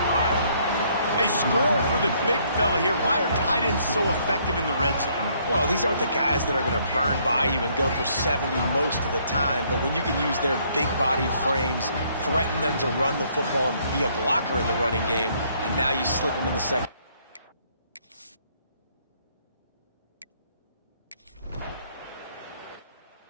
They score for the big fella here. Why are tight ends so effective in the red zone? Well, these aren't the guys that are going to burn by you and go for 70 most of the time, but when you can use their big-bodied frames, threaten them to run the football and be a blocker in the running game, and now you slip them in the second.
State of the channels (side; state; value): both; inverted; correlation -0.67